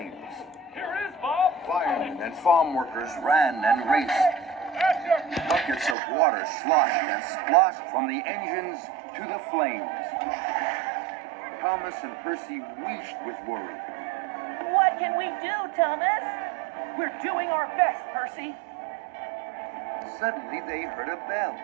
Here is Bob. Firemen and farm workers ran and raced. Buckets of water sloshed and splashed from the engines to the flames. Thomas and Percy wheezed with worry. What can we do, Thomas? We're doing our best, Percy. Suddenly they heard a bell.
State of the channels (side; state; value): left; drops out; at 6.0 s